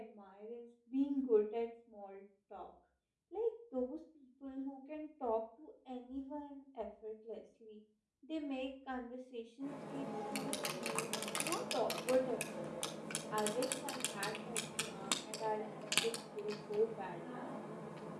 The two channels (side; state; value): both; identical; correlation 1.00